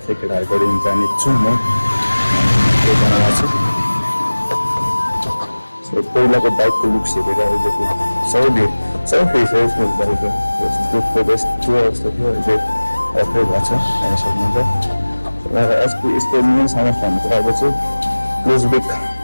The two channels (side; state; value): both; inverted; correlation -1.00